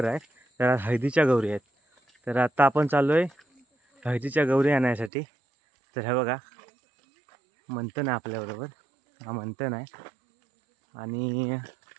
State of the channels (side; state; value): left; drops out; at 5.1 s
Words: आहे, तर हळदीच्या गौरी आहेत. तर आता आपण चाललो आहे हळदीच्या गौरी आणायसाठी. तर हे बघा, मंथन आहे आपल्याबरोबर. हा मंथन आहे आणि